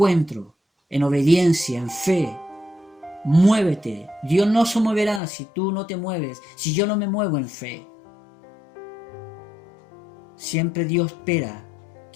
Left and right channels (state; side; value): drops out; right; at 5.2 s